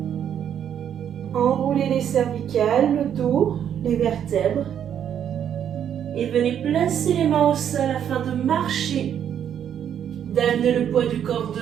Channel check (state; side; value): quieter; left; 9.2 dB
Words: Enroulez les cervicales, le dos, les vertèbres. Et venez placer les mains au sol afin de marcher. D'amener le poids du corps